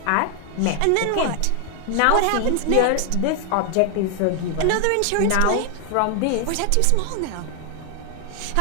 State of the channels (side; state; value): both; different; correlation 0.00